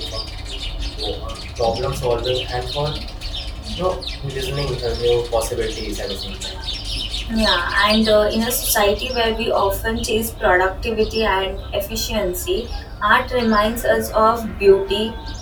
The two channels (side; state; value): both; identical; correlation 1.00